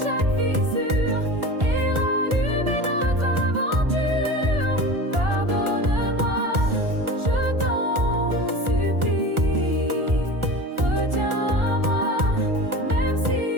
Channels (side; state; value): left; late; 1.4 ms